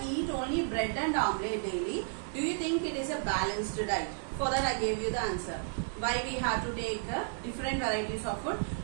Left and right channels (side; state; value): left; silent; digital silence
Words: eat only bread and omelette daily. Do you think it is a balanced diet? For that I gave you the answer. Why we have to take different varieties of food.